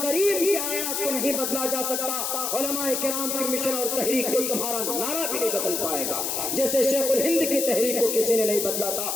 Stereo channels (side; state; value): left; noise; hiss, 1 dB below the sound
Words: کریم کی آیات کو نہیں بدلا جا سکتا، علماء کرام کی مشن اور تحریک کو تمہارا نعرہ بھی نہیں بدل پائے گا، جیسے شیخ الہند کی تحریک کو کسی نے نہیں بدلا تھا.